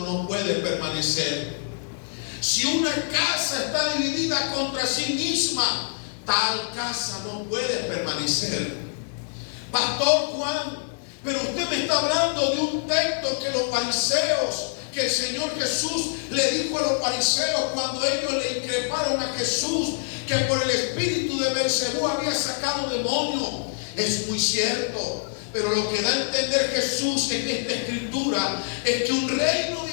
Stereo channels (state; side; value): silent; right; digital silence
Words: puede permanecer. Si una casa está dividida contra sí misma, tal casa no puede permanecer. Pastor Juan, pero usted me está hablando de un texto que los fariseos, que el Señor Jesús le dijo a los fariseos cuando ellos le increparon a Jesús que por el espíritu de Beelzebú había sacado demonios. Es muy cierto. Pero lo que da a entender Jesús en esta escritura es que un reino